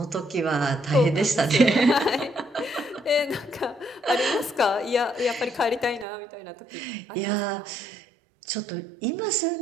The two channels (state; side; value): drops out; left; at 6.1 s